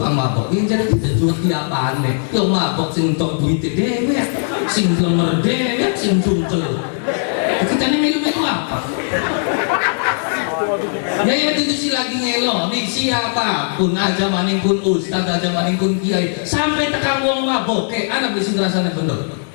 mabok. Iki jadi juwet di apane? Yo mabok sing entuk duite dhewe, sing lemer dhewe, sing cungkel. Kita nih melu-melu apa? Ya itu sih lagi ngelo nih siapapun aja maning pun ustaz aja maning pun kiai sampai tekan wong mabok anak bisa ngerasanya bener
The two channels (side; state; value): right; silent; digital silence